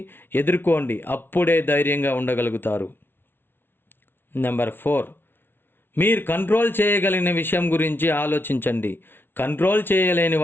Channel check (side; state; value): right; late; 0.11 ms